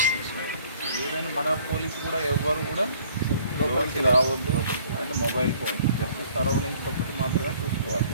ఏదైనా మన పోలీస్ కూడా ఎవరు కూడా లోపలికి రావద్దు and mobile phone just surroundings ఒకటి మాత్రమే చూసుకోవాలి.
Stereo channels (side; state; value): both; inverted; correlation -0.57